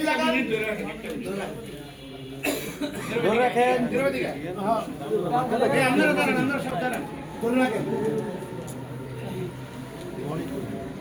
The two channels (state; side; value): identical; both; correlation 1.00